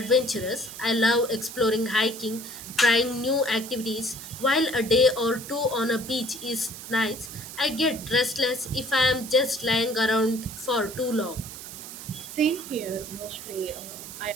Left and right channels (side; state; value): right; noise; hiss, 12 dB below the sound